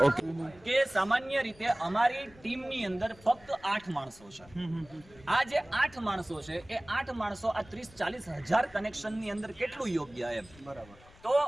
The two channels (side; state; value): left; noise; rumble, 24 dB below the sound